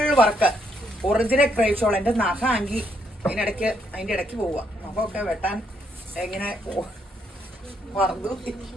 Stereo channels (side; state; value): both; normal; correlation 0.74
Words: work, original crepe shawl. എന്റെ നഖ ആങ്കി അതിന്റെ ഇടയ്ക്ക് പോവുക. നഖമൊക്കെ വെട്ടാൻ എങ്ങനെ മറന്നു.